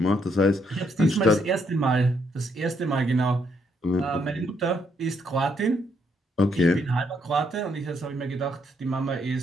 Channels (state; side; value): normal; both; correlation 0.74